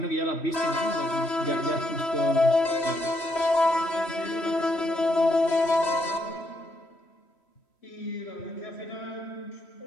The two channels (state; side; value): late; right; 3.1 ms